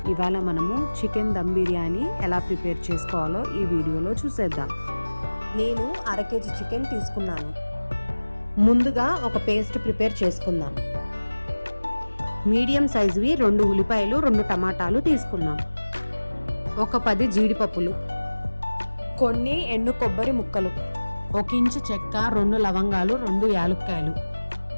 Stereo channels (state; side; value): inverted; both; correlation -1.00